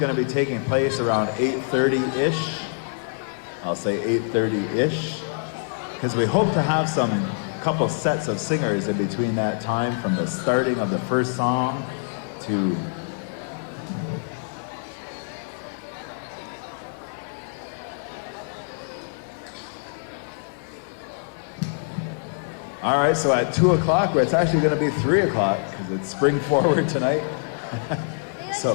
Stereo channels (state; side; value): silent; right; digital silence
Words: to be taking place around 8:30-ish. I'll say 8:30-ish. Because we hope to have some couple sets of singers in between that time, from the starting of the first song to all right, so at 2 o'clock, it's actually going to be 3 o'clock because it's spring forward tonight.